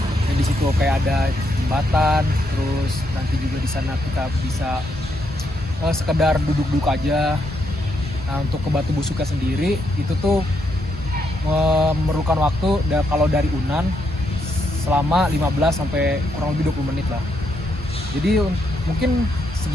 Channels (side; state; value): both; normal; correlation 0.78